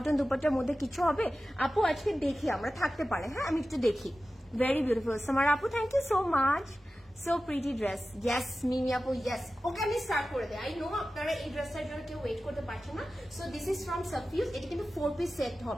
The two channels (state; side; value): normal; both; correlation 0.94